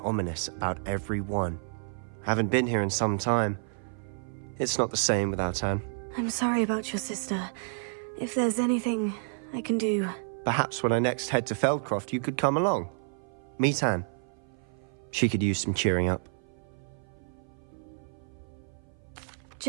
Ominous about every one. Haven't been here in some time. It's not the same without Anne. I'm sorry about your sister. If there's anything I can do... Perhaps when I next head to Feldcroft, you could come along. Meet Anne. She could use some cheering up.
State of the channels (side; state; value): left; silent; 55 dB below the other